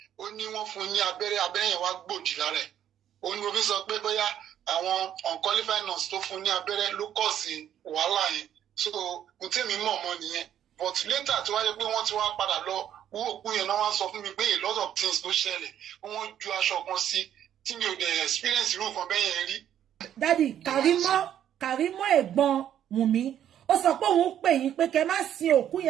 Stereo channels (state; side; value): quieter; left; 10.4 dB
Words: ó ní wọ́n fún ní abẹ́rẹ́ yẹn wá gbòdì lára ẹ̀ ó ní mo fi sọ pé bóyá àwọn unqualified nurse tó fún ní abẹ́rẹ́ ló kọ̀ sí wàhálà yẹn so mo tẹ́mi mọ̀ mọ́ nìyẹn but later tí wáyé pé wọ́n ti wá padà lọ wú òkú yẹn náà wá sọ fún mi pé a lot of things ló ṣẹlẹ̀ wọ́n ju aṣọ kan sí tí mi ò dẹ̀ experience irú nǹkan bẹ́ẹ̀ yẹn rí. Dádì Kàrímọ́ ẹ̀gbọ́n Wùmí ó sọ pé òun pè yín pé kẹ́ má sin òkú